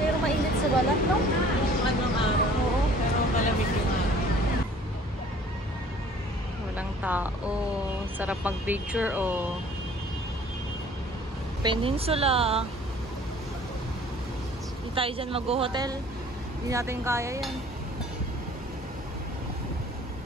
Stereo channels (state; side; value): normal; both; correlation 0.52